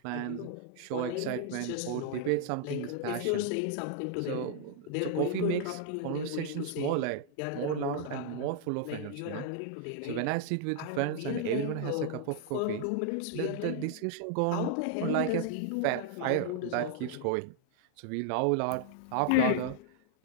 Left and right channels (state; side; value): different; both; correlation -0.01